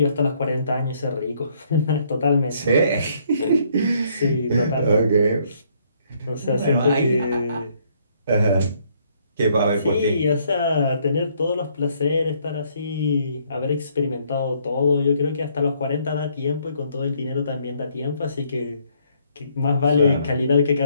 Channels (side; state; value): both; inverted; correlation -0.67